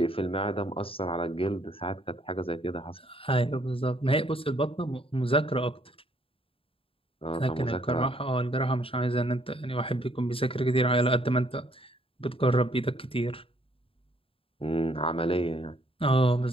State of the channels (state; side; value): late; right; 0.27 ms